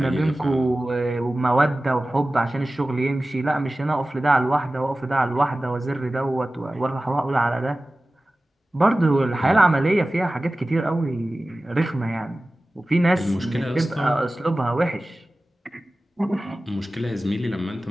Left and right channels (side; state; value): both; normal; correlation 0.96